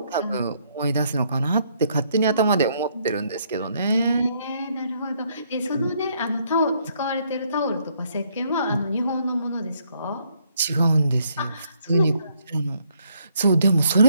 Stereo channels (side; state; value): both; inverted; correlation -0.70